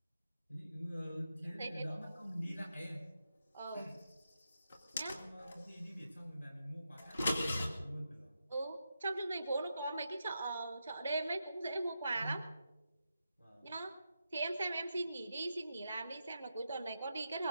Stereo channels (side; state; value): both; inverted; correlation -0.87